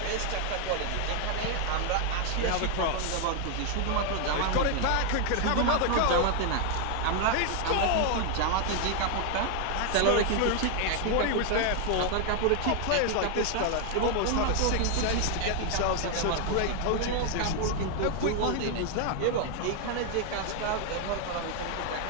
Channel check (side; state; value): both; different; correlation 0.00